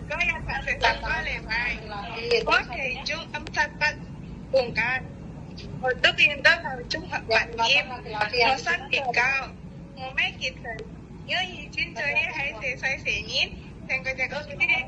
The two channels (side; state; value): both; identical; correlation 1.00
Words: có ya phản sự sẵn có lề bài. Có thể chúng âm sát bắt cùng can. Một tức yên đó là chúng hợp bản nghiêm. Nó sát đỉnh cao. Một mấy kịp thời. Nhớ gì chuyên chơi hãy sẽ xoay xế nhít. Thành cái chắc ớt cái